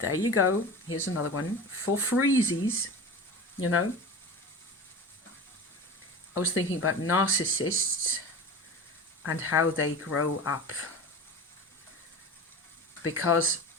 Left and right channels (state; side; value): normal; both; correlation 0.32